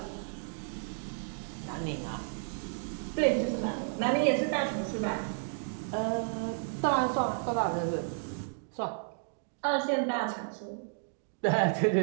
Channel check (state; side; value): silent; left; digital silence